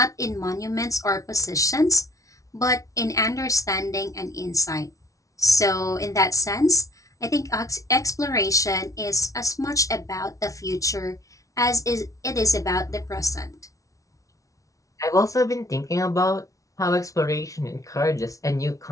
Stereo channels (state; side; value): late; right; 0.16 ms